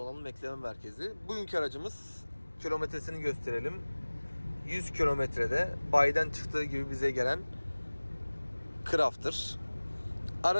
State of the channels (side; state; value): both; inverted; correlation -1.00